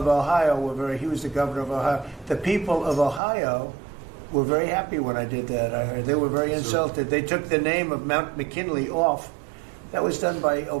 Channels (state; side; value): drops out; left; at 3.2 s